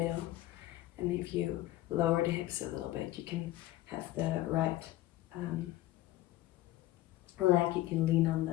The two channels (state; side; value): quieter; right; 15.6 dB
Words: And if you lower the hips a little bit, you can have the right leg, you can lean on